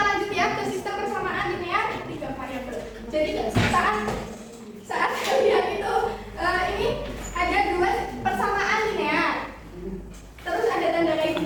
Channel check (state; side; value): identical; both; correlation 1.00